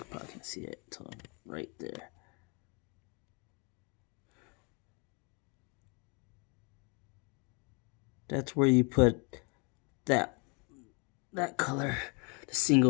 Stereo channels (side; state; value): right; quieter; 32.6 dB